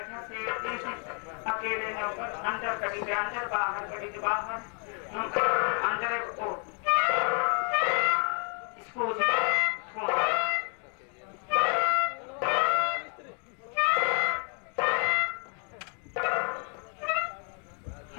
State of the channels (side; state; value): right; quieter; 39.7 dB